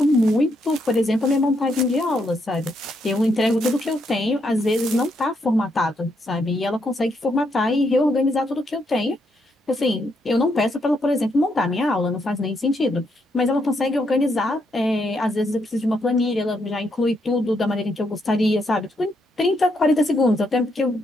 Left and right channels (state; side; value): normal; both; correlation 0.77